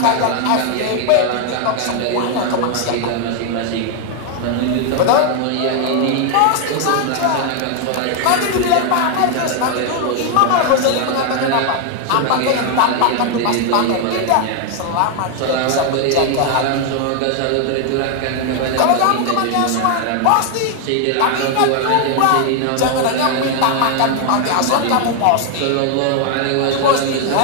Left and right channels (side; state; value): both; different; correlation 0.00